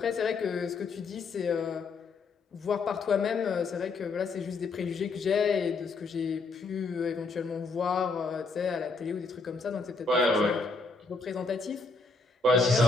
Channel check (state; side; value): quieter; right; 4.0 dB